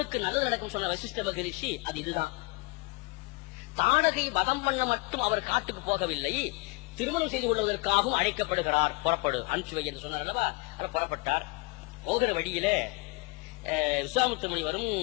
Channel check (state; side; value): quieter; right; 25.8 dB